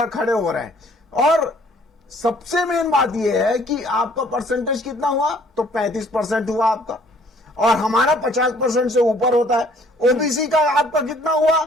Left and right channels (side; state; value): both; normal; correlation 0.59